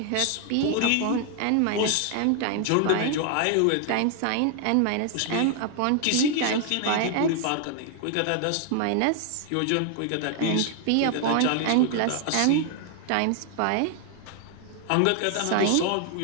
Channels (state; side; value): different; both; correlation 0.00